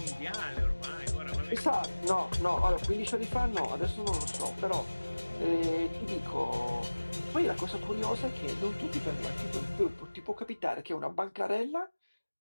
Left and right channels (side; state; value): both; inverted; correlation -1.00